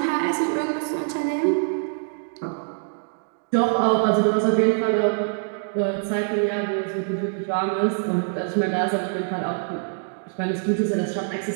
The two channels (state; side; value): silent; left; digital silence